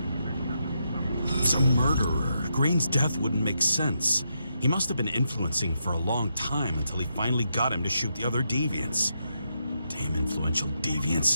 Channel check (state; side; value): inverted; both; correlation -0.82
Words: He's a murderer. Green's death wouldn't make sense. He must have been influencing for a long time until he finally got him to shoot the other deviants. Damn influential